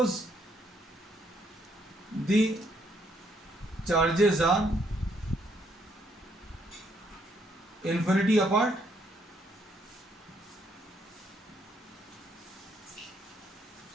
the charges are infinity apart,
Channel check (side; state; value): both; normal; correlation 0.71